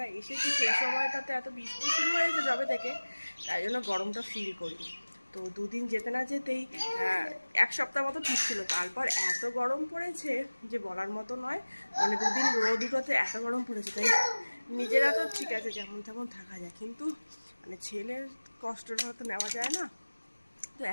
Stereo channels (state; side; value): inverted; both; correlation -1.00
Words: এসেছি সেই সময়টাতে এত বৃষ্টি শুরু হয়েছে যবে থেকে, তাই জন্য গরমটা ফিল করিনি। তো দুদিন যেতে না যেতেই এক সপ্তাহ মতো ঠিক ছিল, তারপর এত গরম পড়েছে যে বলার মতো নয়। মানে দুদিন রোদ উঠোতে এত গরম পড়েছে, তাই নিজেরা তো ঠিক আছে যেমন তেমন থাকা যায়, কিন্তু মানে ছেলের কষ্টটা তো নেওয়া যায় না। তো